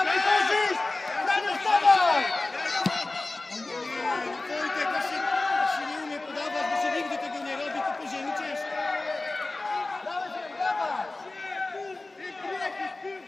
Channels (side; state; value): right; quieter; 3.1 dB